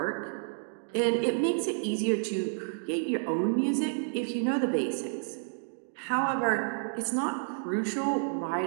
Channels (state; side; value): silent; left; digital silence